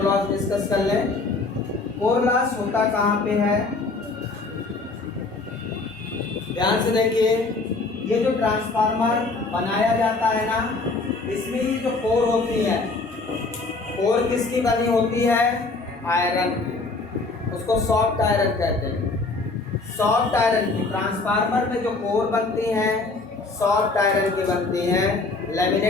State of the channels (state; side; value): quieter; right; 3.6 dB